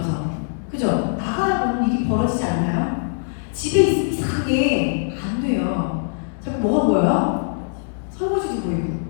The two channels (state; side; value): silent; right; digital silence